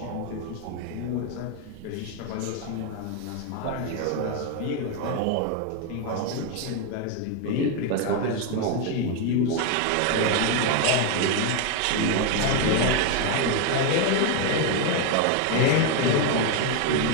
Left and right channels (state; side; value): different; both; correlation 0.01